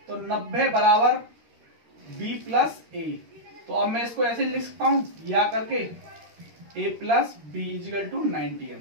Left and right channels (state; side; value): late; left; 13 ms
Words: तो 90 बराबर बी प्लस ए, तो अब मैं इसको ऐसे लिख सकता हूं या करके a plus B equal to 90